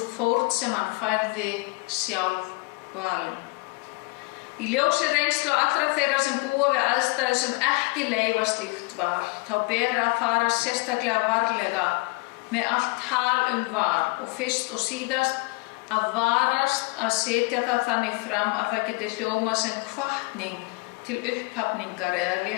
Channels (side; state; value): right; quieter; 26.9 dB